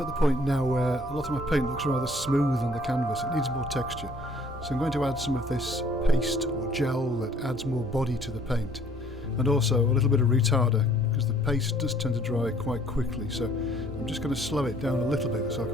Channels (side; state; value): both; normal; correlation 0.58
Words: the point now where a lot of my paint looks rather smooth on the canvas. It needs more texture. So I'm going to add some of this paste or gel that adds more body to the paint. And also a little bit of retarder, because the paste does tend to dry quite quickly. So I'm just going to slow it down a little bit so I